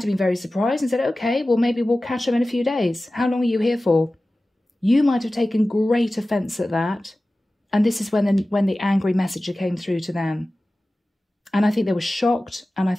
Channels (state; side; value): normal; both; correlation 0.96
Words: have been very surprised and said, okay, well, maybe we'll catch them in a few days. How long are you here for? You might have taken great offence at that. And this is when the angry messenger came through to them. And I think they were shocked, and I